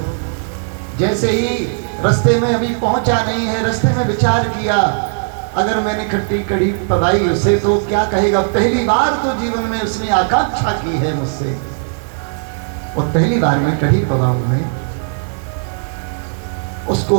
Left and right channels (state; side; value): silent; left; 68 dB below the other